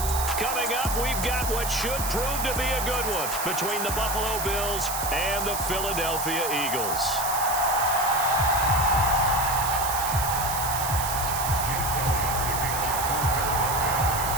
Coming up, we've got what should prove to be a good one between the Buffalo Bills and the Philadelphia Eagles.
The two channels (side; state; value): right; noise; hiss, 5 dB below the sound